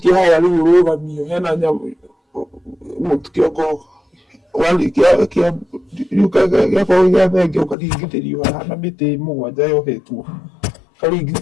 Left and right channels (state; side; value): drops out; right; at 7.8 s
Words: haya rĩu ũrũgamio hena nyamũ kĩongo warĩkia gĩakorwo gĩa thenge ũkaringithĩrio haha na mĩtĩ mũgwanja yohetwo